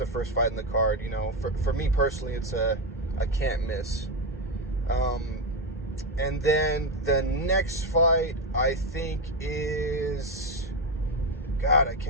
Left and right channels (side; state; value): both; normal; correlation 0.09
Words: first fight in the card. For me personally, it's a can't miss. And then the next fight, I think, is... God, I